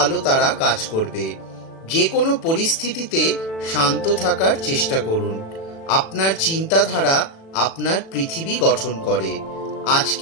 তারা কাজ করবে। যে কোনো পরিস্থিতিতে শান্ত থাকার চেষ্টা করুন। আপনার চিন্তাধারা আপনার পৃথিবী গঠন করে।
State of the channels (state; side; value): late; right; 36 ms